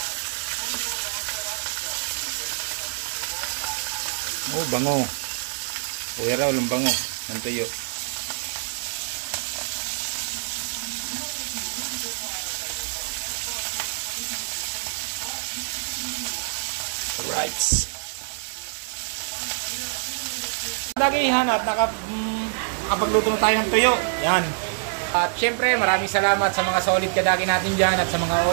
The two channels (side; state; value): left; silent; digital silence